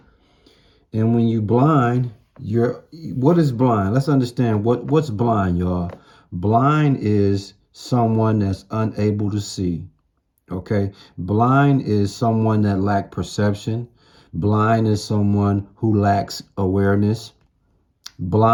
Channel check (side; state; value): both; identical; correlation 1.00